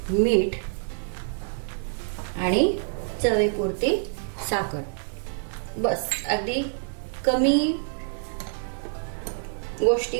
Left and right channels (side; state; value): left; silent; digital silence